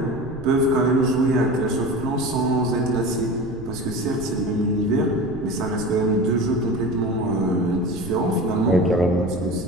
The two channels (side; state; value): right; noise; rumble, 14 dB below the sound